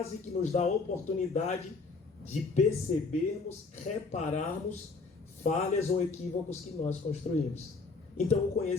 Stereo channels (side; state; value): right; quieter; 4.1 dB